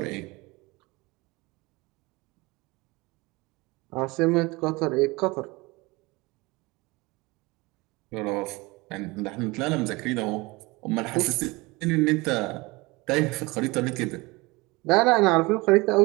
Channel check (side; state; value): left; quieter; 23.7 dB